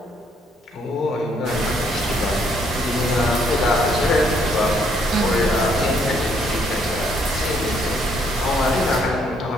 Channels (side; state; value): both; normal; correlation 0.69